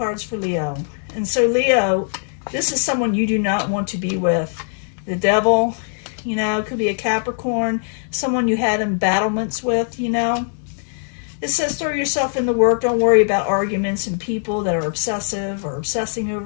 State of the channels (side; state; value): right; silent; digital silence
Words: for Leo. And so Leo, this is someone you do not want to be with. The Devil, it could be a Capricorn, someone you had embattlements with, It says throw yourself in the work. Don't worry about arguments and people that are obsessive or obsessing